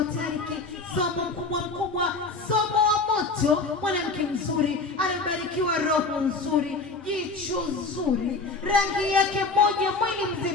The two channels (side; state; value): right; quieter; 3.8 dB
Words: Tariki. Somo mkubwa, somo wa moto, mwanamke mzuri, anabarikiwa roho nzuri, jicho zuri, rangi yake moja, mwili